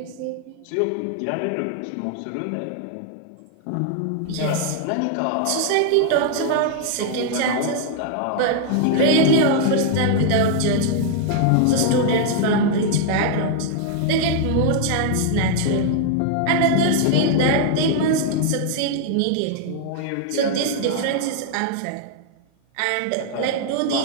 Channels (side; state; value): both; different; correlation 0.00